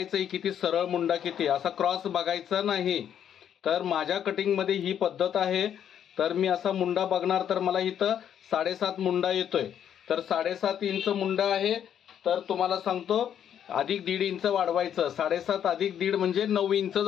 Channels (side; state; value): right; quieter; 9.4 dB